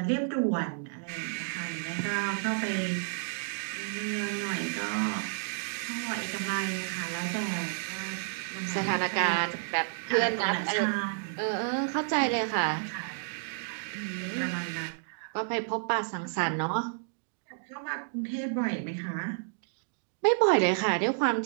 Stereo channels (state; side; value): silent; left; digital silence